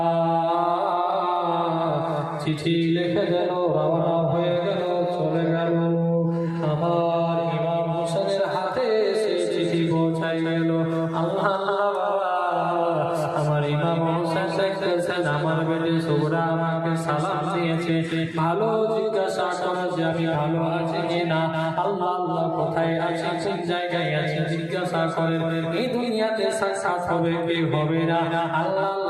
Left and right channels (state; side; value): identical; both; correlation 1.00